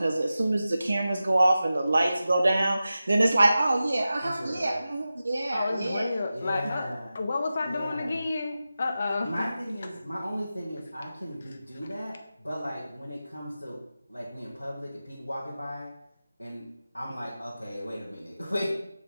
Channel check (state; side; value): inverted; both; correlation -0.94